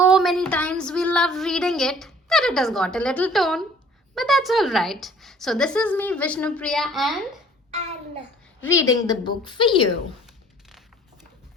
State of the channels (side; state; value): both; normal; correlation 0.53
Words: many times. We love reading it that it has got a little tone. But that's all right. So this is me, Vishnupriya, and Anna. reading the book for you.